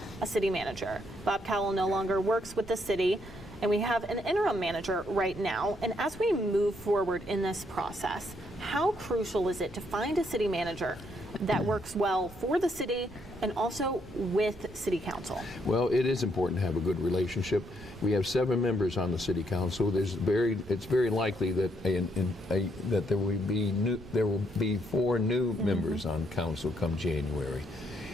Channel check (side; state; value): right; noise; rumble, 19 dB below the sound